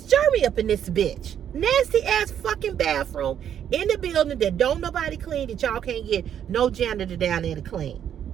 Jeremy up in this bitch. Nasty ass fucking bathroom in the building that don't nobody clean, that y'all can't get no janitor down there to clean.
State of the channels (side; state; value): left; quieter; 9.5 dB